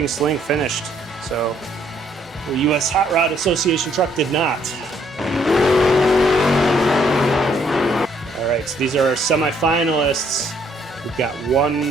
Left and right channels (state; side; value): normal; both; correlation 0.67